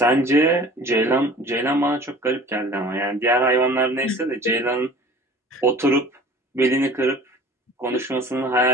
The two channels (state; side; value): normal; both; correlation 0.45